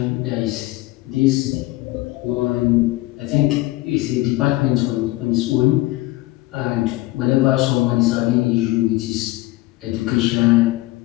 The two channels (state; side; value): quieter; right; 19.1 dB